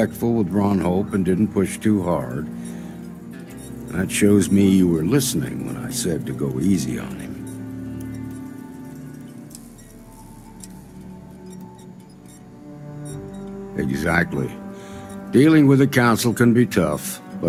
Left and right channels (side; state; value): both; identical; correlation 1.00